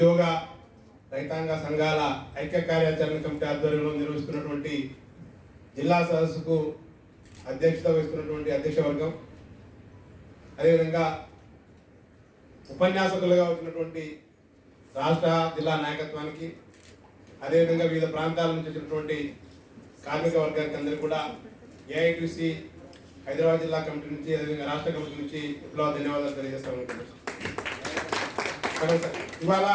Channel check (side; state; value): both; identical; correlation 1.00